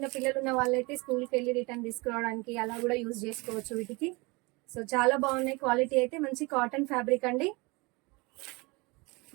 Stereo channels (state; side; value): quieter; left; 26.3 dB